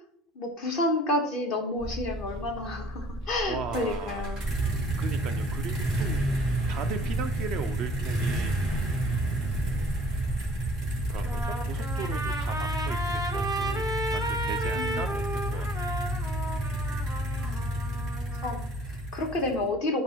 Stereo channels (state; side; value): normal; both; correlation 0.53